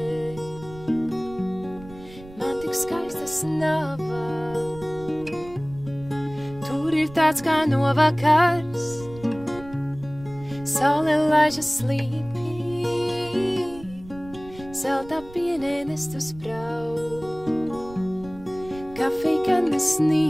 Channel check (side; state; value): right; noise; rumble, 18 dB below the sound